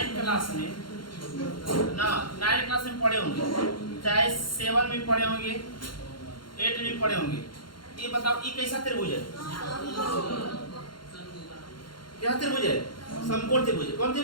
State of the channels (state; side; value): late; right; 0.72 ms